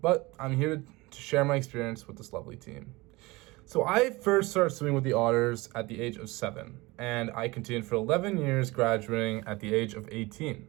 But I'm here to share my experience with this lovely team. So I first started swimming with the Otters at the age of 7, and I continued for 11 years, graduating at the age of 18.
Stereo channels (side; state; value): left; quieter; 22.5 dB